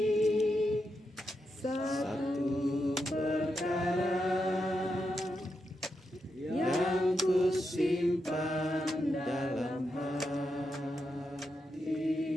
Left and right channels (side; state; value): both; normal; correlation 0.85